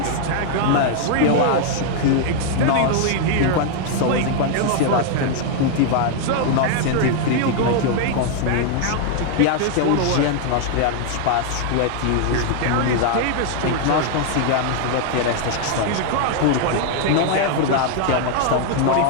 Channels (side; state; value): both; different; correlation 0.00